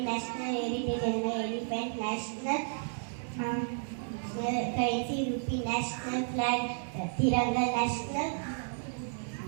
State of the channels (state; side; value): silent; left; 56 dB below the other